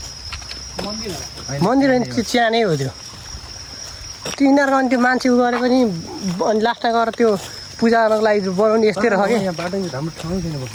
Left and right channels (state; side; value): identical; both; correlation 1.00